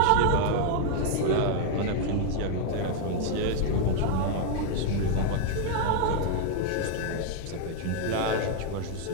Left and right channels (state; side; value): different; both; correlation 0.00